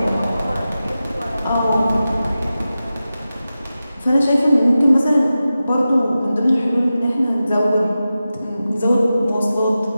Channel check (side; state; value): both; inverted; correlation -0.93